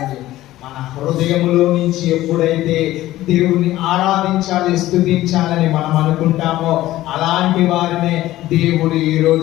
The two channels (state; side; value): quieter; right; 15.5 dB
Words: మన హృదయములో నుంచి ఎప్పుడైతే దేవుణ్ణి ఆరాధించాలి, స్తుతించాలని మనం అనుకుంటామో అలాంటి వారినే దేవుడు ఈ